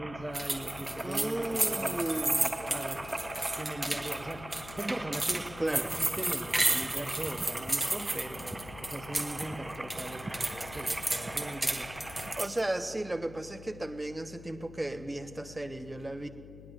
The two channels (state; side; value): noise; left; hum, 15 dB below the sound